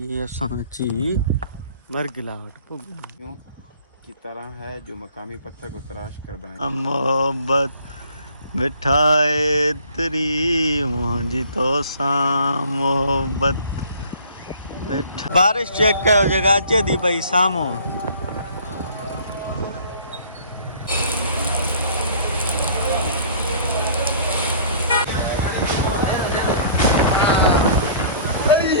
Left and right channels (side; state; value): both; inverted; correlation -0.53